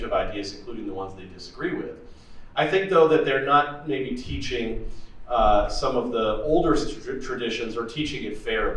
of ideas, including the ones they disagree with. I think, though, that they're not maybe teaching some of the older traditions, or teaching it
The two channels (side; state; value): both; identical; correlation 1.00